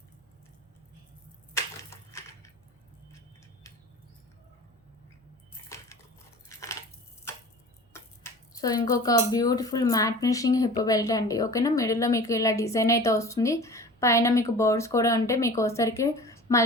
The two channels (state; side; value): normal; both; correlation 0.40